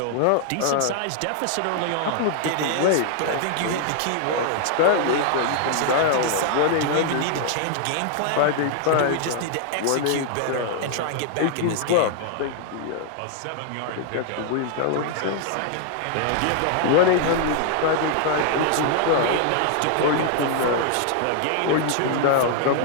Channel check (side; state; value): both; different; correlation 0.00